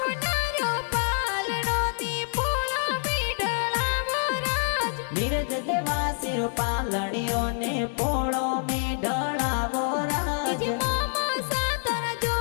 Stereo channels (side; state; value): right; silent; 60 dB below the other